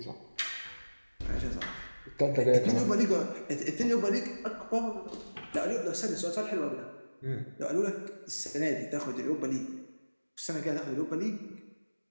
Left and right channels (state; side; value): inverted; both; correlation -1.00